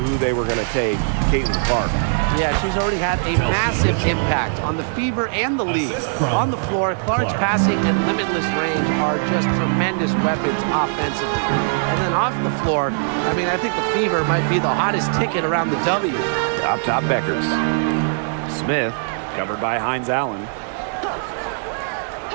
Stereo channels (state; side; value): silent; left; 65 dB below the other